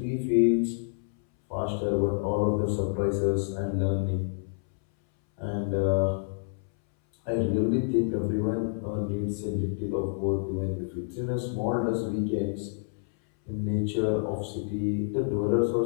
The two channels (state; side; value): silent; right; 59 dB below the other